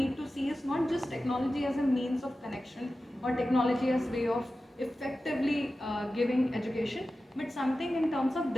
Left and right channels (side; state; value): both; normal; correlation 0.94